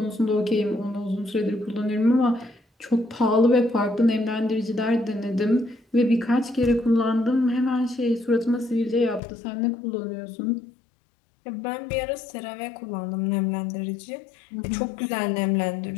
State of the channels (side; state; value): right; drops out; at 9.2 s